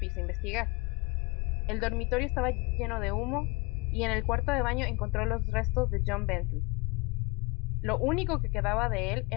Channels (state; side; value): quieter; right; 26.0 dB